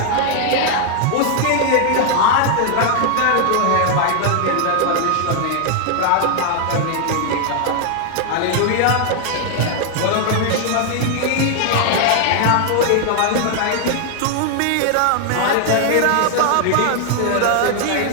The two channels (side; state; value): both; different; correlation 0.00